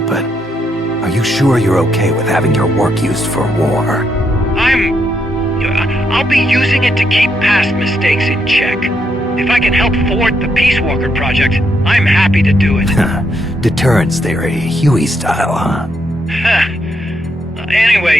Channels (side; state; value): both; normal; correlation 0.78